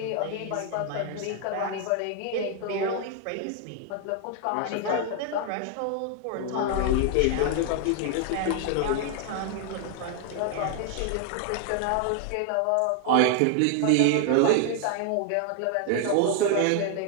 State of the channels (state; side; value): different; both; correlation 0.00